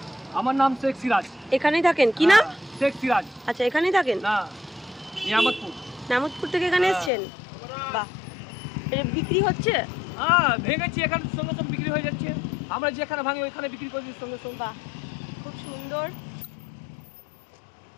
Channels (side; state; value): right; drops out; at 7.1 s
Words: আমার নাম শেখ সিরাজ। এখানেই থাকেন? কি নাম? শেখ সিরাজ। আচ্ছা, এখানেই থাকেন? না, নিয়ামতপুর। নামতপুর থেকে এখানে এসেছেন? বাহ, এটা বিক্রি হচ্ছে? হ্যাঁ, ভেঙেছি এখানে সঙ্গে সঙ্গে বিক্রি হয়ে যাচ্ছে। আমরা যেখানে ভাঙি ওইখানে বিক্রি করে দিই সঙ্গে সঙ্গে। বাহ, খুব সুন্দর।